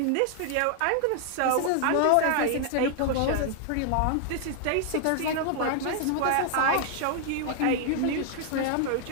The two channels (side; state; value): both; different; correlation 0.00